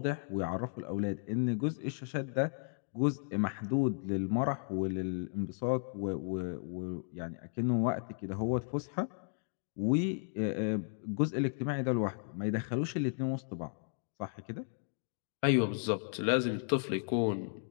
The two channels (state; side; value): silent; right; digital silence